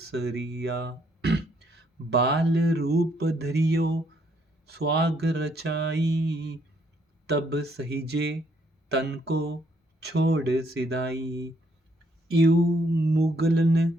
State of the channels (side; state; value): both; normal; correlation 0.70